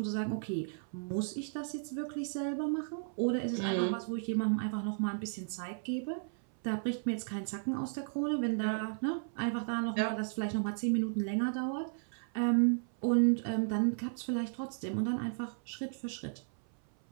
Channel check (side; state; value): left; silent; 55 dB below the other